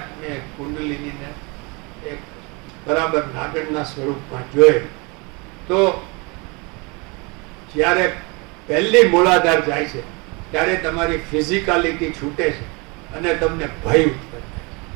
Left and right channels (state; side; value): quieter; left; 28.9 dB